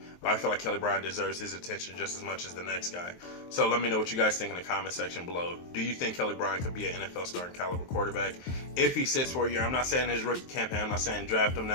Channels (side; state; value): right; late; 23 ms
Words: But I feel like Kelly Bryant deserves his attention just as much as the next guy. So let me know what you guys think in the comment section below. Do you think Kelly Bryant could be an NFL starting caliber quarterback if he sits for a year? I'm not saying his rookie campaign. I'm not saying draft him